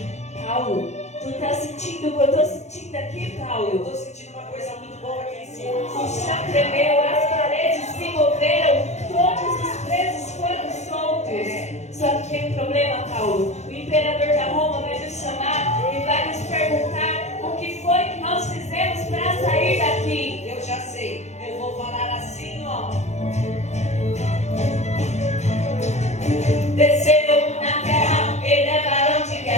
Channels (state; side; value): late; right; 0.33 ms